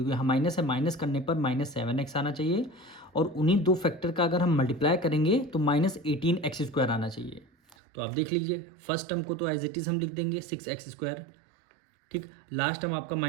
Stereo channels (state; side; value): drops out; left; at 7.8 s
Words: यहाँ माइनस है, माइनस करने पर -7x आना चाहिए, और उन्हीं 2 फैक्टर का अगर हम मल्टीप्लाई करेंगे तो -18x² आना चाहिए। तो आप देख लीजिए, फर्स्ट टर्म को तो एज इट इज़ हम लिख देंगे 6x²। ठीक, लास्ट टर्म आपका